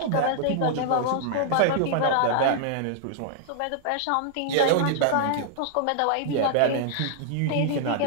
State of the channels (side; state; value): both; different; correlation -0.01